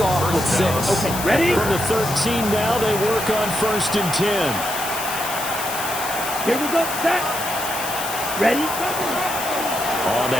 off with 6. Okay, ready? From the 13 now, they work on 1st and 10. Here we go, set. Ready? On the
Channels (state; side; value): noise; left; hiss, 7 dB below the sound